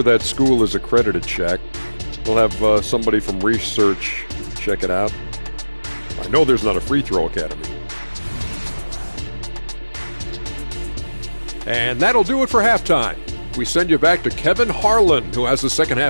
that school is accredited, Shaq. We'll have somebody from research check it out. I know there's not a free throw academy. And that'll do it for halftime. We send you back to Kevin Harlan, who has the second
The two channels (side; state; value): both; inverted; correlation -1.00